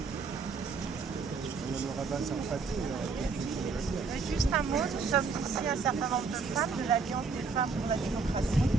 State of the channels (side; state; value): left; quieter; 4.7 dB